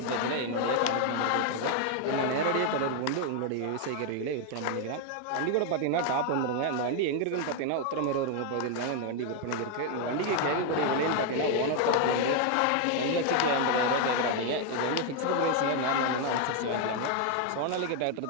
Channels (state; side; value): different; both; correlation 0.01